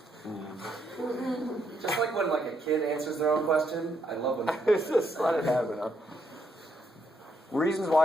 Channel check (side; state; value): both; normal; correlation 0.76